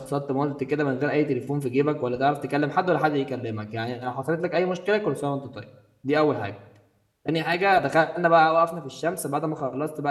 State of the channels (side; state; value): both; identical; correlation 1.00